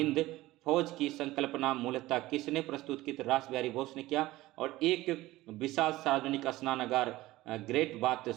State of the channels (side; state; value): left; quieter; 17.7 dB